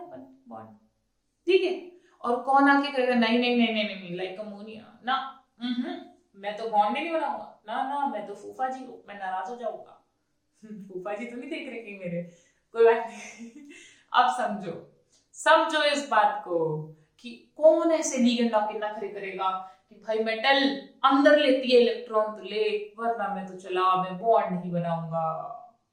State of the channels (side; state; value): both; identical; correlation 1.00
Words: बॉन्ड, ठीक है, और कौन आके कहेगा नहीं लाइक अमोनिया ना, मैं तो बॉन्ड नहीं बनाऊंगा ना, मैं तो फूफा जी हूँ, मैं नाराज हो जाऊंगा फूफा जी तो नहीं देख रहे मेरे, कोई बात नहीं अब समझो इस बात को कि कौन ऐसे लिगेंड आके नखरे करेगा कि भाई मेटल अंदर लेती है इलेक्ट्रॉन तो ले, वरना मैं तो चला, मैं बॉन्ड नहीं बनाऊंगा।